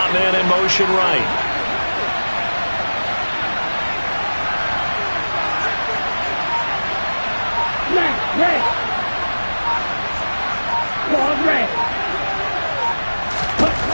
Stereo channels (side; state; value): both; inverted; correlation -1.00